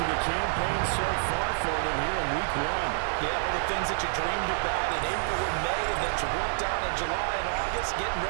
the campaign so far for them here in Week 1. Yeah, all the things that you dreamed about in April and May and that you worked on in July and August, getting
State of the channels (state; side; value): silent; left; digital silence